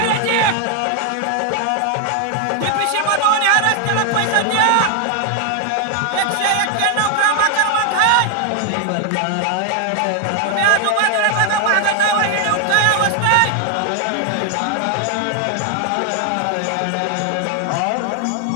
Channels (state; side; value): different; both; correlation 0.00